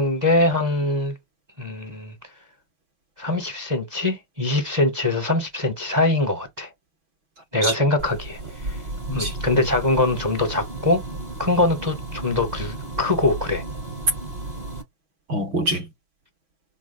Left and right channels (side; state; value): left; late; 6.0 ms